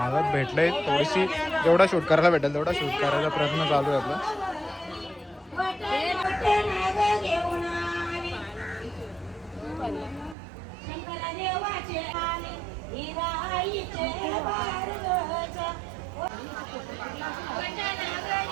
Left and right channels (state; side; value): drops out; left; at 10.4 s